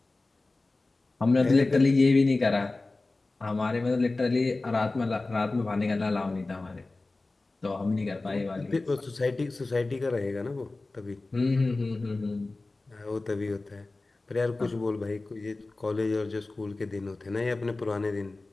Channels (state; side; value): quieter; right; 3.2 dB